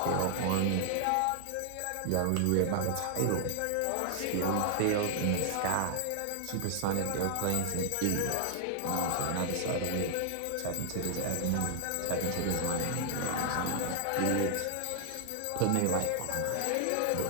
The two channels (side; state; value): both; different; correlation 0.00